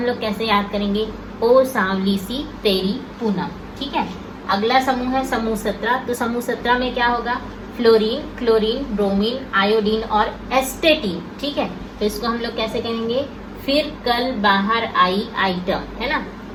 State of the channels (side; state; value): both; identical; correlation 1.00